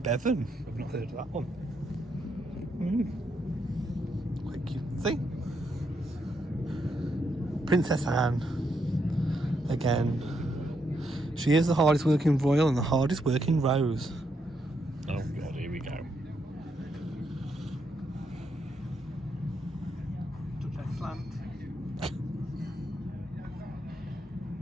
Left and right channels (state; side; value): normal; both; correlation 0.78